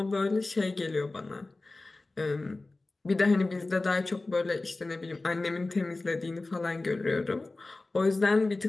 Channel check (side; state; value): right; quieter; 3.2 dB